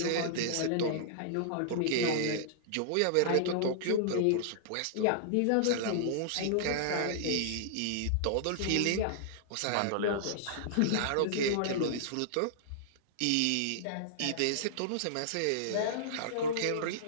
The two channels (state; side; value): different; both; correlation -0.02